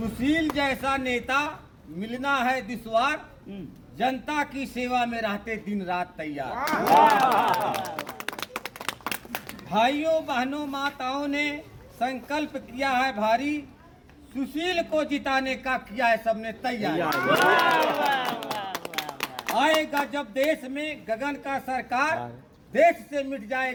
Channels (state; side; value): identical; both; correlation 1.00